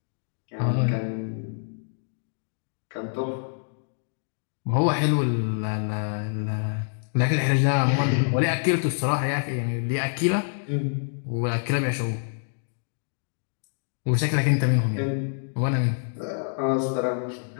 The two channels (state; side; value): silent; right; digital silence